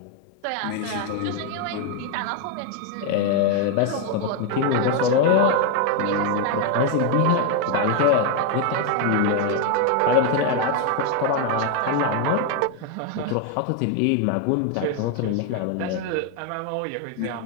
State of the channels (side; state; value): both; different; correlation 0.01